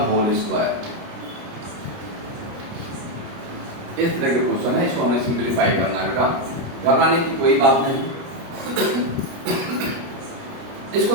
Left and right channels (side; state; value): left; late; 29 ms